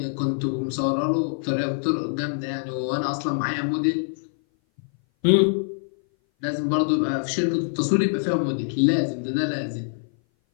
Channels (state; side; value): silent; right; 58 dB below the other